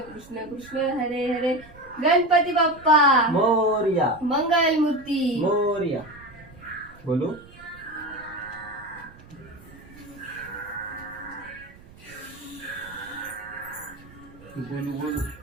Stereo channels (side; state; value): right; noise; rumble, 22 dB below the sound